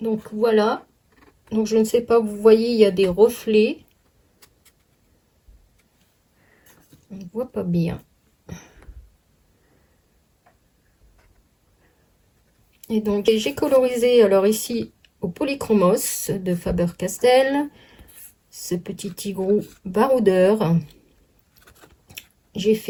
Donc voilà, donc je ne sais pas, vous voyez, il y a des reflets. On ne voit pas bien. Et donc j'ai colorisé, alors ici, au Polychromos de Faber-Castell, ce petit tigrou baroudeur. J'ai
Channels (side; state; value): both; identical; correlation 1.00